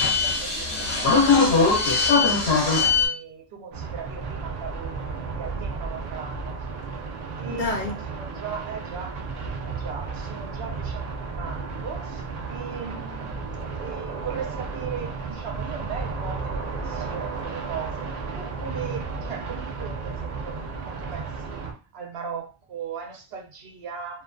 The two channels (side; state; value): both; normal; correlation -0.07